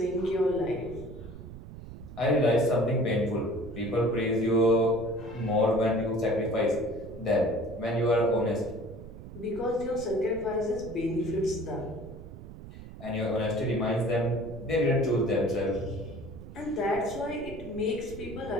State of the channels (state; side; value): noise; right; rumble, 14 dB below the sound